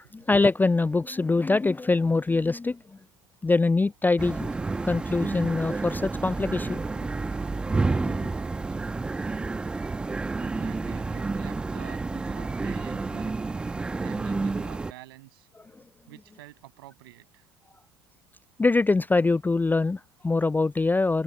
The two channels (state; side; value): normal; both; correlation 0.92